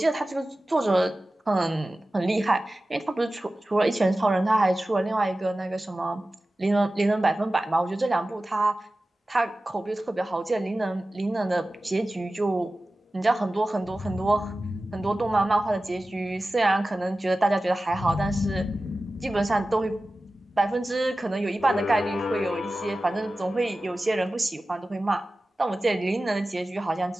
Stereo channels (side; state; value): both; normal; correlation 0.95